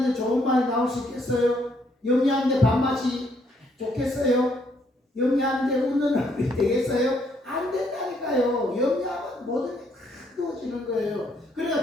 좋은 말이 나올 수 있겠어요? 염려하는데 밥맛이 좋겠어요? 염려하는데 웃는 얼굴이 되겠어요? 안 된다니까요. 염려하면 모든 게 다 누워지는 거예요. 그러니까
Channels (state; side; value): normal; both; correlation 0.70